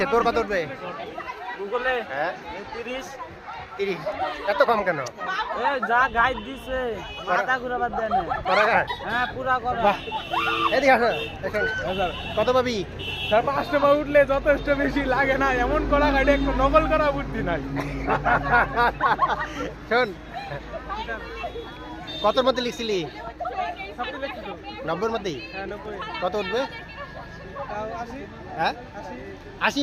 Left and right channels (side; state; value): both; identical; correlation 1.00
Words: তোর কত উঠবে? গুগলে হ্যাঁ 30। 30। এত কম কেন? এ যা গাইড দিছে মাথা ঘুরাবার দেন না। করাঘাট? হ্যাঁ পুরা করা। বাহ, এদিকে আসো, এখন কত পাবি? 5টা বার উঠলে যথেষ্ট বেশি লাগে না, এমন করা গাড়ি একটু নকল করা বুদ্ধি নাই। শোন, কতর মধ্যে লিখছিলি? সবটা দেখছি তো। 90-র মধ্যেই? হ্যাঁ 90। কত উঠবে? 80। হ্যাঁ 80